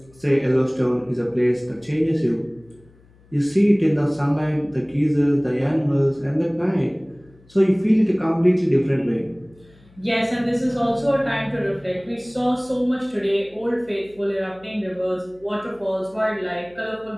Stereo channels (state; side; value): noise; left; hum, 28 dB below the sound